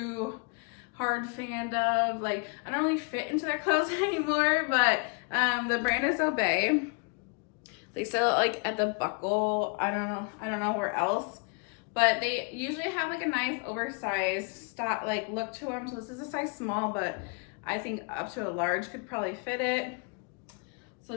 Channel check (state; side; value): quieter; right; 34.8 dB